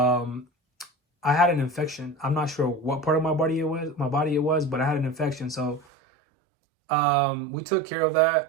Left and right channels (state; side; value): drops out; left; at 5.9 s